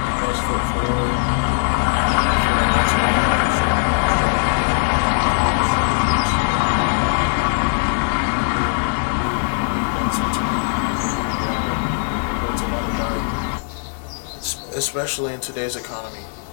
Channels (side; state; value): right; silent; digital silence